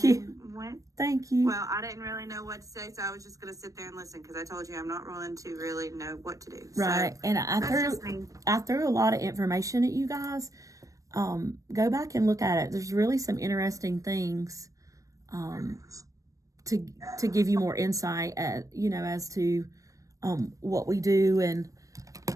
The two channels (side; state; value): left; late; 0.16 ms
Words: you. Went. Thank you. Well, I didn't really know what to say, so I was just going to sit there and listen, because I told you I'm not willing to really know what to do. Right. So, and I threw a lot of information at you guys. Go back and look at it. There's really some interesting things to give you more insight as to what we do and